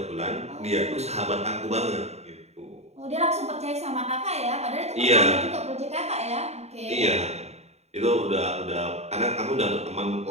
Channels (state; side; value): late; left; 0.31 ms